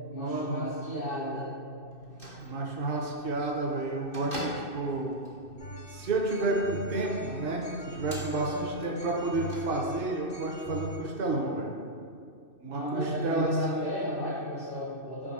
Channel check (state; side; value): late; right; 2.6 ms